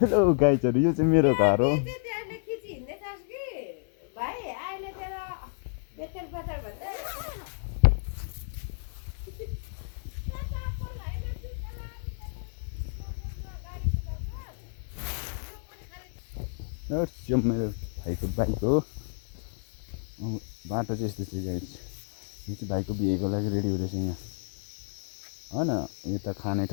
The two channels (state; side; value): silent; right; 57 dB below the other